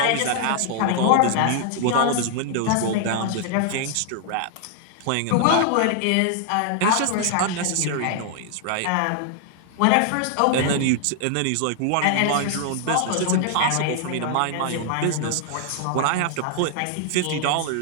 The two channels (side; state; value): both; different; correlation 0.00